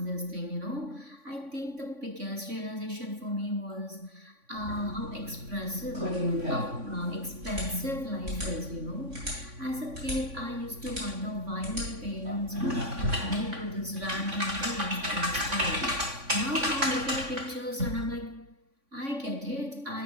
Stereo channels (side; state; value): left; late; 3.5 ms